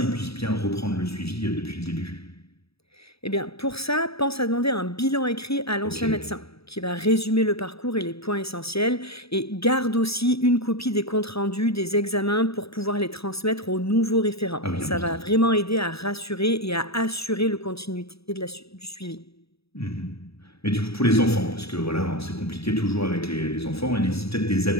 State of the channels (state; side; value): late; right; 0.77 ms